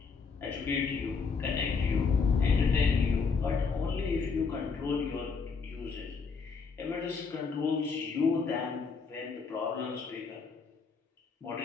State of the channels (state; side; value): quieter; right; 5.0 dB